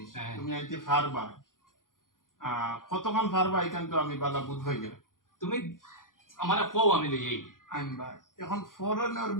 হ্যাঁ। তুমি আনতে ফারবা কতক্ষণ ফারবা এখান তো আমি বালা বুধ হয়ে গেল তুমি আমারে কও আমি লইয়াই আনবা এখন ফরেনের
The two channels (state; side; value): late; right; 0.90 ms